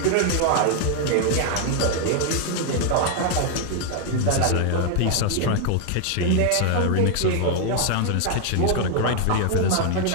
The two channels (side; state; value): both; different; correlation 0.00